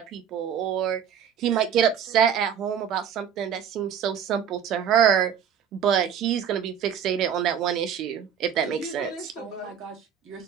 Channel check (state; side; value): quieter; left; 8.4 dB